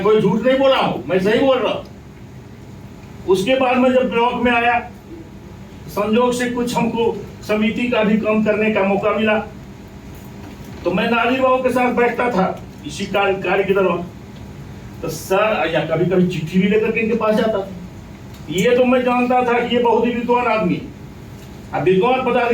कोई झूठ नहीं बोला हूँ, मैं सही बोल रहा हूँ। उसके बाद में जब ब्लॉक में आया, संजोग से कुछ हमको समिति का भी काम करने का मौका मिला, तो मैं नाजिर बाबू के साथ बैठता था इसी कार्य के दौरान। तो सर या कभी कभी चिट्ठी भी लेकर के इनके पास जाता था। ये तो मैं जानता था कि ये बहुत ही विद्वान आदमी। अब विद्वान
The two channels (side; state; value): both; identical; correlation 1.00